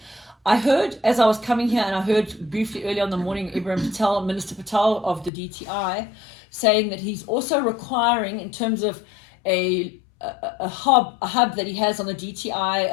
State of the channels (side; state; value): right; drops out; at 5.3 s